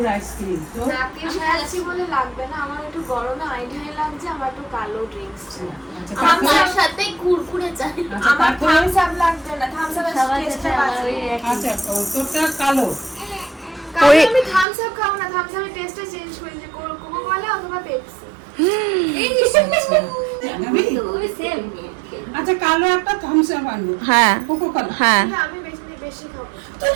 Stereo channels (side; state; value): left; drops out; at 14.7 s